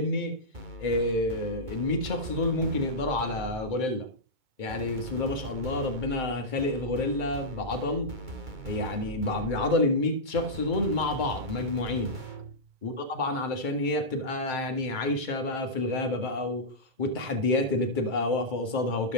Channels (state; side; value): late; left; 2.2 ms